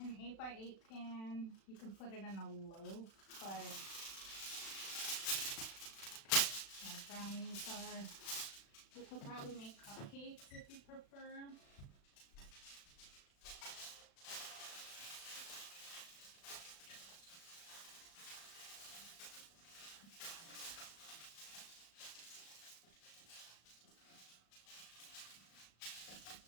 8x8 pan, you can put it in a loaf, but my brownies are, you could probably make cupcakes if you prefer.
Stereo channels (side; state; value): right; late; 36 ms